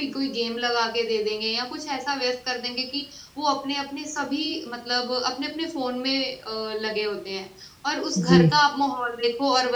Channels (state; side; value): identical; both; correlation 1.00